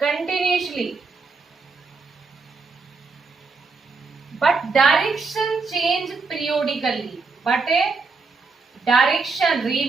continuously but direction change periodically, but direction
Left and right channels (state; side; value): quieter; left; 4.3 dB